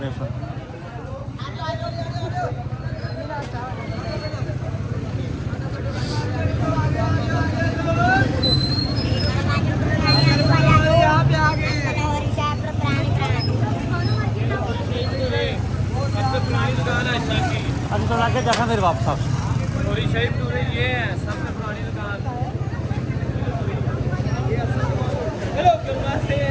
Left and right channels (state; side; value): identical; both; correlation 1.00